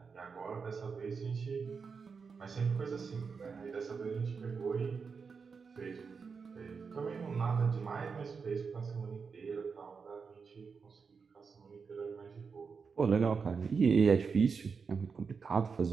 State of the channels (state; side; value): quieter; left; 5.4 dB